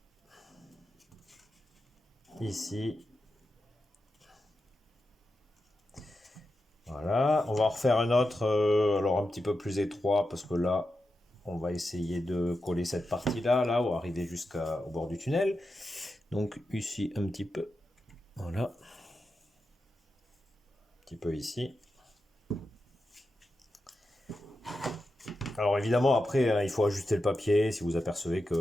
ici. Voilà, on va en refaire un autre, alors un petit peu plus étroit, parce que là, on va essayer de coller cette partie-là, là, ou arriver jusqu'au bord du tunnel. Donc ici, un petit peu, voilà, un petit peu ici. Alors évidemment, après, hein, il faut ajuster le papier si vous apercevez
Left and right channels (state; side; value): normal; both; correlation 0.89